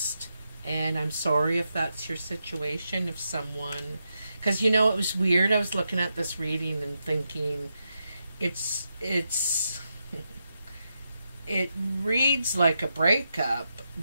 and I'm sorry if that's your situation. If someone, because you know, it was weird. I was looking at this reading and thinking, it's it reads like a breakup,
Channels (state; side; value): inverted; both; correlation -0.85